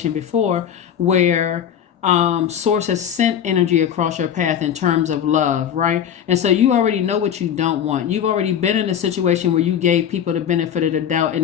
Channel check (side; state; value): right; quieter; 9.1 dB